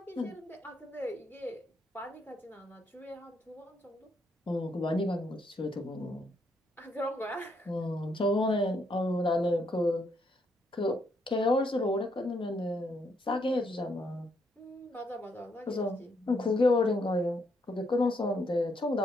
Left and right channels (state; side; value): normal; both; correlation 0.75